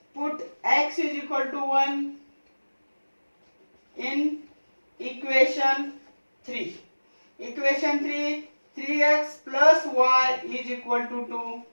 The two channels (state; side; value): inverted; both; correlation -1.00